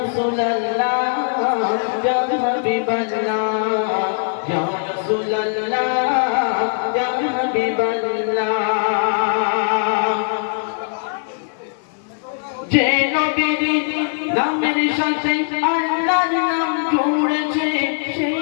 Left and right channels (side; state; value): right; silent; 56 dB below the other